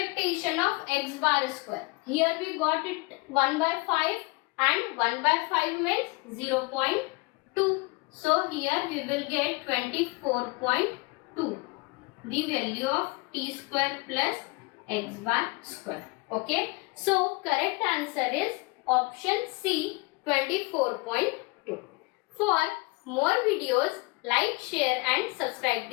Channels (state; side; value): quieter; right; 26.5 dB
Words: of x bar square. Here we got it 1 by 5, and 1 by 5 means 0.2. So here we will get 24.2, the value of t square plus x bar square. Okay. So correct answer is option C, 24.2. For more videos, like, share and subscribe